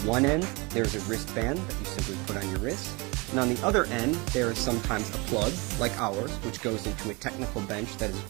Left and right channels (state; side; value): quieter; left; 27.1 dB